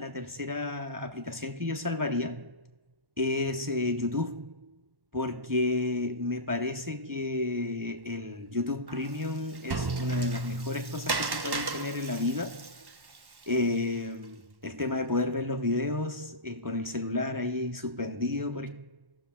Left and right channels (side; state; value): left; late; 1.1 ms